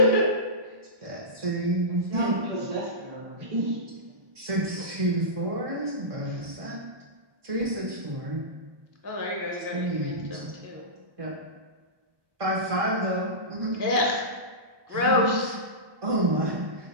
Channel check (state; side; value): late; left; 1.2 ms